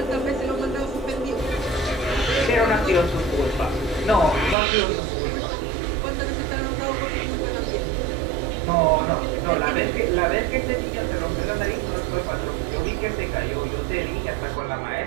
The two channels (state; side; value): drops out; left; at 4.5 s